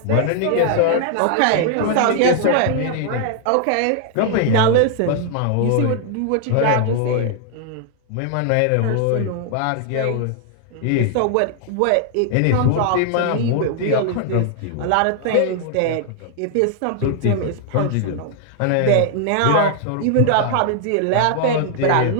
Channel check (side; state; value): both; different; correlation 0.00